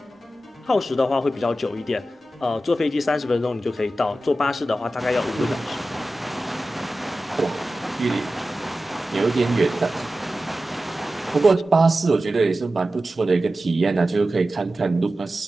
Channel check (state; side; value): normal; both; correlation 0.94